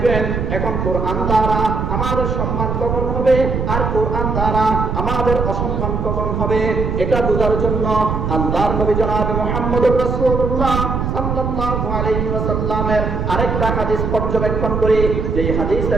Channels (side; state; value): right; noise; rumble, 1 dB below the sound